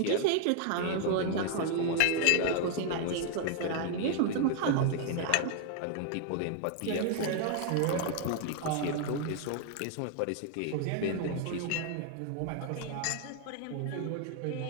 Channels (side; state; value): both; different; correlation 0.00